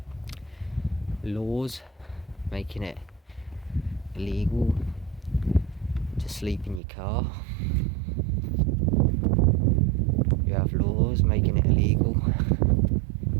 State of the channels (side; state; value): left; drops out; at 6.8 s